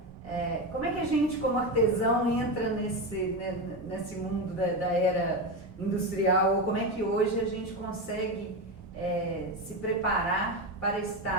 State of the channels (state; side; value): normal; both; correlation 0.16